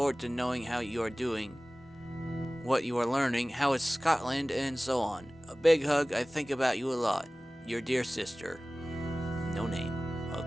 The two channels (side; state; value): both; normal; correlation 0.98